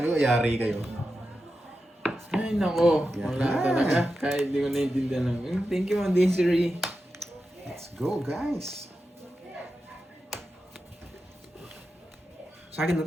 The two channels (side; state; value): both; normal; correlation 0.90